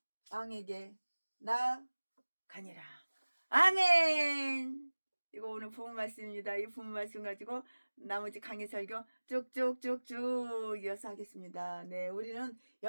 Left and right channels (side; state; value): both; inverted; correlation -1.00